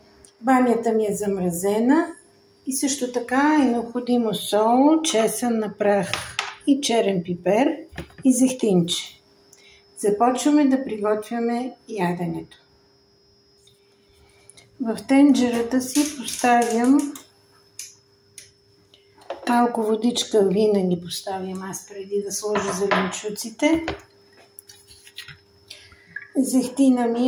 Бамята ми е замразена и също така е необходимо сол, чесън на прах и черен пипер и зехтинче. Започваме да приготвяме яденето. В тенджерата си поставям малко водичка, винаги поставям аз преди да сложа зеленчуците. Зехтина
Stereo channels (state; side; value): identical; both; correlation 1.00